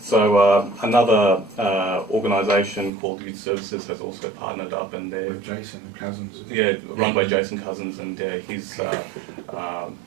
So another organisation called Youth Services has also partnered up, and they're With Jason Cousins. run by Jason Cousins, and he's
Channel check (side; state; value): left; drops out; at 2.9 s